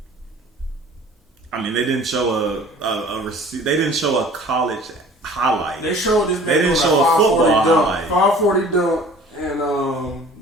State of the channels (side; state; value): both; normal; correlation 0.48